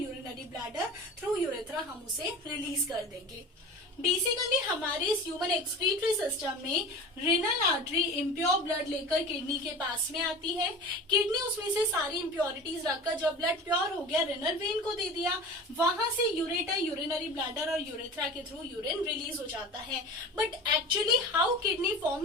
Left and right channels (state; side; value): normal; both; correlation 0.35